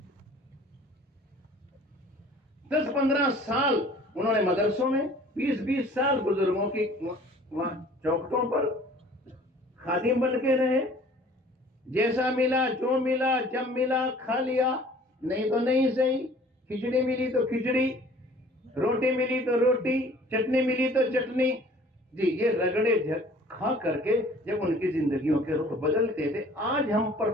10-15 سال انہوں نے مدرسوں میں، 20 سال بزرگوں کی چوکٹوں پر خادم بن کے رہے، جیسا ملا جو ملا جب ملا کھا لیا، نہیں تو نہیں صحیح، کھچڑی ملی تو کھچڑی، روٹی ملی تو روٹی، چٹنی ملی تو چٹنی، جی یہ رگڑے کھا کر کے جب ان کی زندگیوں کے رخ بدلتے تھے۔ آج ہم پر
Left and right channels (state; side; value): normal; both; correlation 0.51